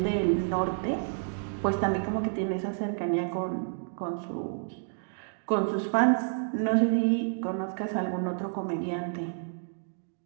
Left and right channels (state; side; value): silent; left; digital silence